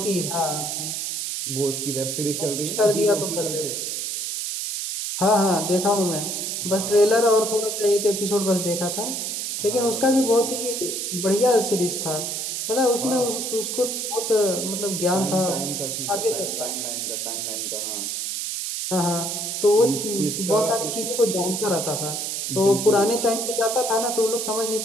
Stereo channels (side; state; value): right; noise; hiss, 3 dB below the sound